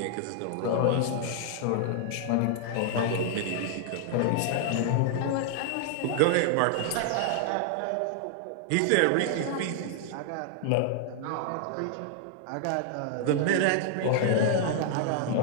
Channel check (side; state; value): both; different; correlation -0.01